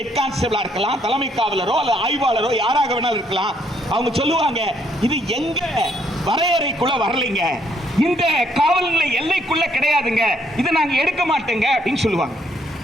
கான்ஸ்டபிளா இருக்கலாம், தலைமை காவலரோ அல்லது ஆய்வாளரோ யாராக வேணாலும் இருக்கலாம், அவங்க சொல்லுவாங்க இது எங்க வரையறைக்குள்ள வரலைங்க, இந்த காவல் நிலைய எல்லைக்குள்ள கிடையாதுங்க, இதை நாங்க எடுக்க மாட்டோங்க அப்படின்னு சொல்லுவாங்க.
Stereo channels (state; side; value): normal; both; correlation 0.70